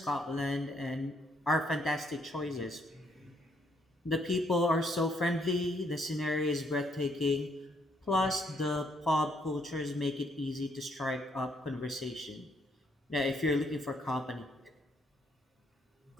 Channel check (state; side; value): normal; both; correlation 0.70